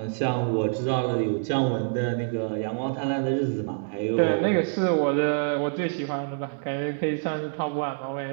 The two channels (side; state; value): left; silent; digital silence